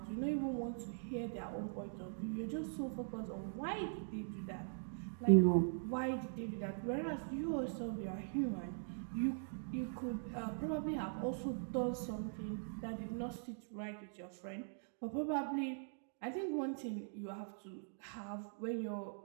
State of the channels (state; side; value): silent; left; digital silence